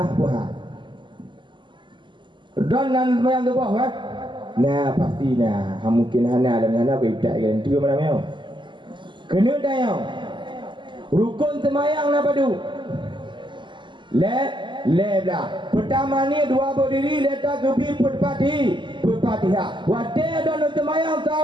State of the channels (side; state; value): left; late; 0.23 ms